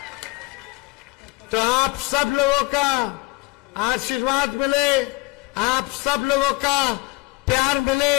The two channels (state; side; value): quieter; right; 24.4 dB